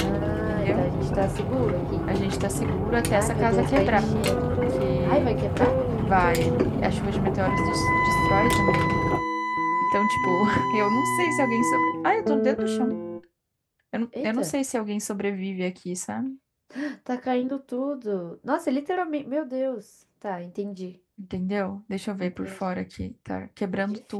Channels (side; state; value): both; identical; correlation 1.00